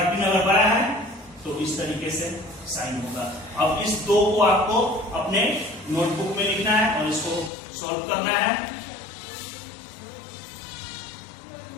अगर बड़ा है तो इस तरीके से साइन होगा। अब इस दो को आपको अपने नोटबुक में लिखना है और इसको सॉल्व करना है।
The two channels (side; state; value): right; drops out; at 7.5 s